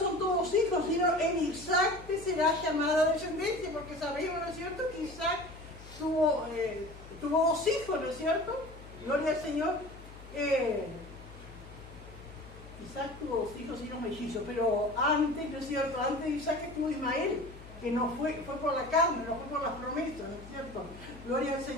todos hijos, sino en Isaac te será llamada descendencia, porque sabemos, ¿no es cierto?, que Isaac tuvo 2 hijos, ¿no es cierto? Gloria al Señor. Isaac tuvo 2 hijos y unos mellizos, pero antes, ¿no es cierto?, antes de Isaac estuvo Ismael, que no fue por la carne, no fue por las promesas, ¿no es cierto? Gloria al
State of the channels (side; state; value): left; noise; hum, 17 dB below the sound